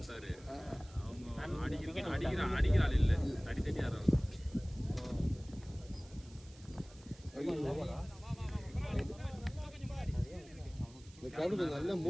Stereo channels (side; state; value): right; noise; hiss, 24 dB below the sound